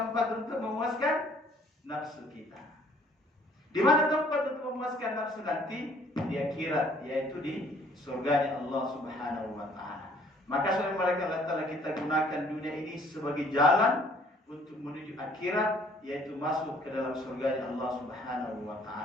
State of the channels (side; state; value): both; normal; correlation 0.59